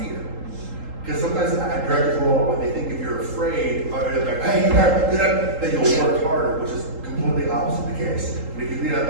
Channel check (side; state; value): left; late; 3.8 ms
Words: Because sometimes directors will, when they think if you're afraid, or they're like, hey, you got that you'll work harder, which is completely opposite the case. But if you lead out